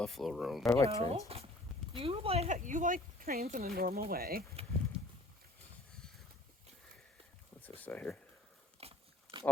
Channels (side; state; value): both; normal; correlation 0.53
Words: roam. I like trains. You like trains in a normal way. What's this say here?